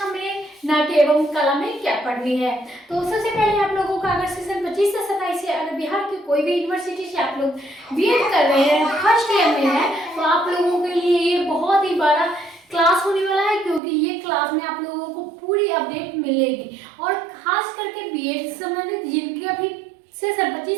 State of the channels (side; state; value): left; drops out; at 13.8 s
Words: में नाट्य एवं कला में क्या पढ़नी है। तो सबसे पहले आप लोगों का अगर सेशन 25 से 27 से अगर बिहार की कोई भी यूनिवर्सिटी से आप लोग बीएड कर रहे हैं, फर्स्ट ईयर में है, तो आप लोगों के लिए ये बहुत ही बड़ा क्लास होने वाला है, क्योंकि ये क्लास में आप लोगों को पूरी अपडेट मिलेगी। और खास करके बीएड से संबंधित जिनके अभी सेशन 25